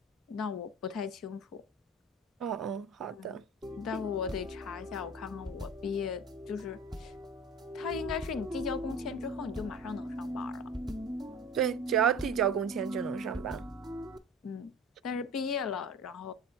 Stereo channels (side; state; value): both; normal; correlation 0.37